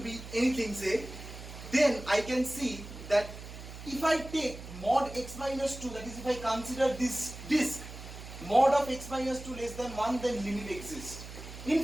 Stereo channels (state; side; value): noise; right; hum, 13 dB below the sound